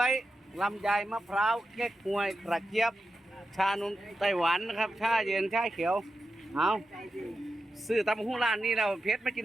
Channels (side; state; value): both; normal; correlation 0.90